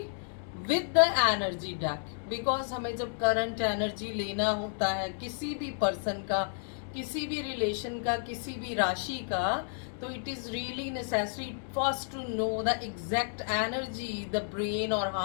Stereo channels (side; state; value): right; silent; digital silence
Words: with the energy deck, because हमें जब current energy लेना होता है किसी भी person का, किसी भी रिलेशन का, किसी भी राशि का, तो it is really necessary first to know the exact energy, the brain और